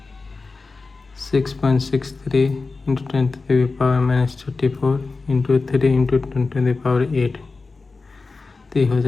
6.63 इंटू 10⁻⁻34 इंटू 3 इंटू 10⁸। तो हो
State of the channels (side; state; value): right; quieter; 4.0 dB